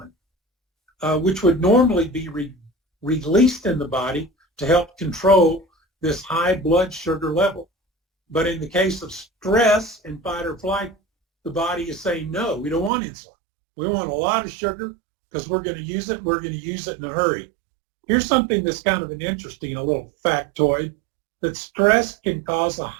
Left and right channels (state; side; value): drops out; left; at 12.9 s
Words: which would normally be released in the body to help control this high blood sugar level. But in the case of stress and fight or flight, the body is saying, no, we don't want insulin. We want a lot of sugar because we're going to use it. We're going to use it in a hurry. Here's something that's kind of an interesting, a little factoid, that stress can cause a